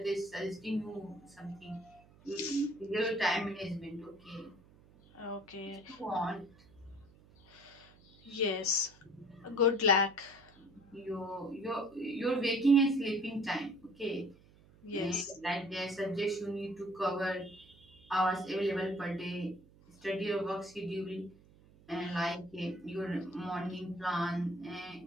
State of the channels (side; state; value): right; noise; hum, 25 dB below the sound